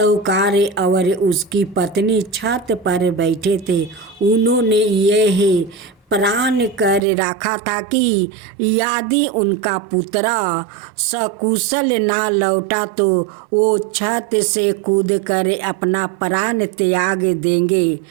और उसकी पत्नी छत पर बैठे थे। उन्होंने यह प्रण कर रखा था कि यदि उनका पुत्र सकुशल ना लौटा तो वो छत से कूदकर अपना प्राण त्याग देंगे।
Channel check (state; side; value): drops out; left; at 7.0 s